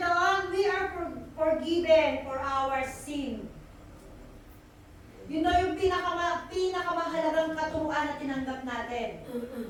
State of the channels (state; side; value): identical; both; correlation 1.00